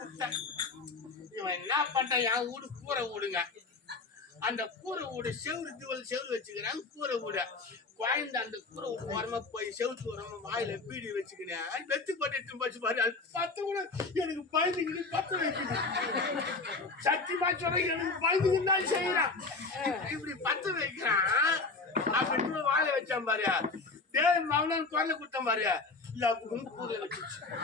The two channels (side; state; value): right; quieter; 3.9 dB